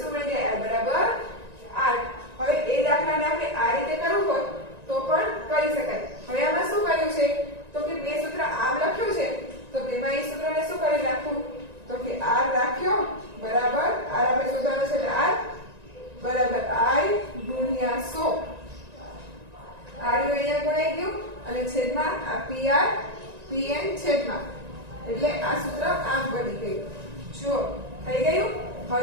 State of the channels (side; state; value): left; late; 1.9 ms